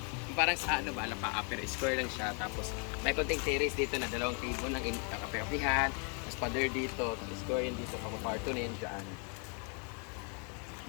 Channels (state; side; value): quieter; right; 38.3 dB